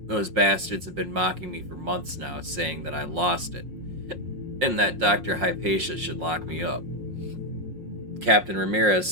Those bastards have been mocking me for months now, saying that I lost it, and that Dr. Hypatia should lock me up. Captain Ramirez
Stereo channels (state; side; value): late; left; 5.6 ms